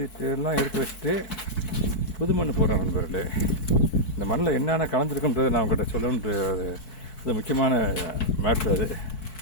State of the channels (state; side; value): late; right; 4.6 ms